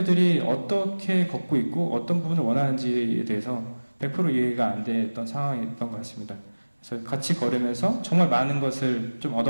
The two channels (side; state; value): both; inverted; correlation -1.00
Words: 어떻게 걷고 있고 어떤 부분을 원하는지에 대해서 100% 이해가 안 됐던 상황이었던 것 같습니다. 그래서 같이 걸으면서 정말 많은 것을 좀